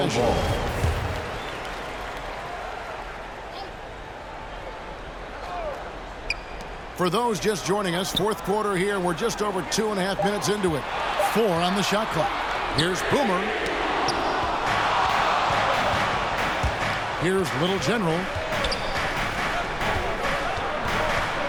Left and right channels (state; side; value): identical; both; correlation 1.00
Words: For those just joining us, fourth quarter here, and we're just over 2.5 minutes into it. 4 on the shot clock. Here's Boomer. Here's Little General.